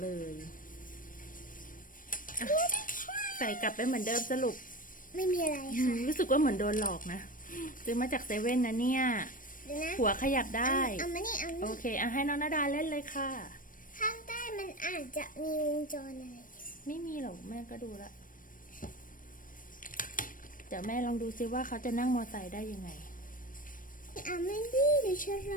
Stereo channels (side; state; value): right; late; 0.40 ms